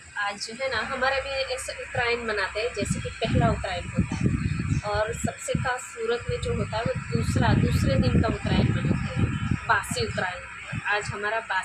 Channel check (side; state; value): both; identical; correlation 1.00